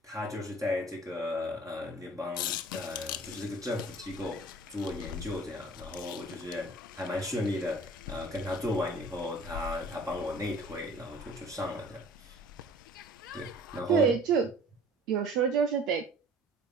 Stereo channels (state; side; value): normal; both; correlation 0.48